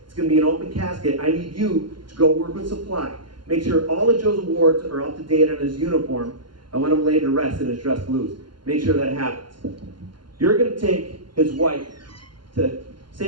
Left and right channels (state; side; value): late; left; 0.72 ms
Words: it's going to be an open casket. I need you to go work with supply. Make sure all of Joe's awards are up to date on his uniform. I want him laid to rest in his dress blues. Make sure that happens. You're going to take his wife to